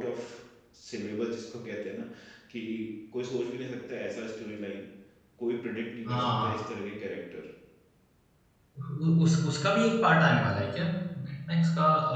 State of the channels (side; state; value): both; identical; correlation 1.00